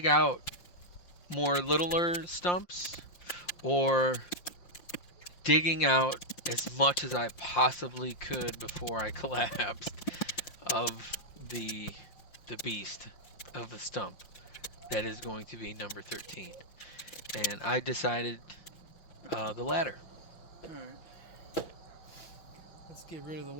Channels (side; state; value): right; late; 5.7 ms